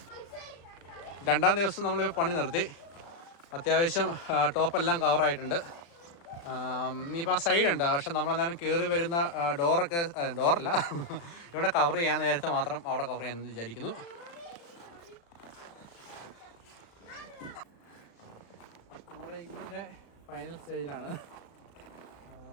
രണ്ടാം ദിവസം നമ്മൾ പണി നിർത്തി. അത്യാവശ്യം ടോപ്പെല്ലാം കവറായിട്ടുണ്ട്. ഇനിയിപ്പോൾ ആ സൈഡുണ്ട്, പക്ഷെ നമ്മളെന്തായാലും കയറി വരുന്ന ഡോറല്ല ഇവിടെ കവർ ചെയ്യാൻ നേരത്തെ മാത്രം അവിടെ കവർ ചെയ്യാമെന്ന് വിചാരിക്കുന്നു. നമ്മുടെ ഇതിൻ്റെ ഫൈനൽ സ്റ്റേജിലാണ്.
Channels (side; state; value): right; late; 35 ms